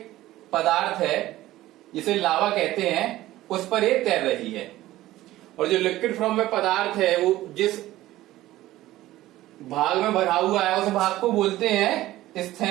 पदार्थ है जिसे लावा कहते हैं, उस पर ये तैर रही है। और जो लिक्विड फॉर्म में पदार्थ है वो जिस भाग में भरा हुआ है उस भाग को बोलते हैं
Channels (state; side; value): quieter; left; 15.8 dB